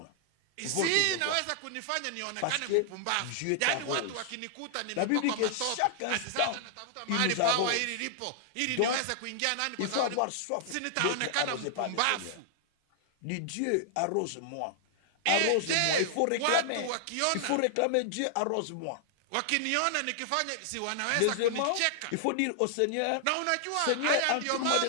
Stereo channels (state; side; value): different; both; correlation -0.01